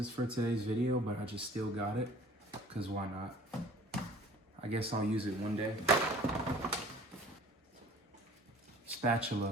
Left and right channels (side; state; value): both; normal; correlation 0.48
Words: for today's video, but I just still got it, because why not? I guess I'll use it one day.